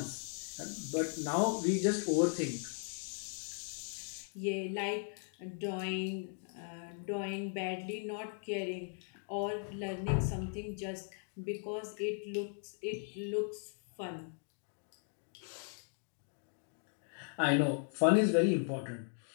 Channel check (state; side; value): silent; right; 53 dB below the other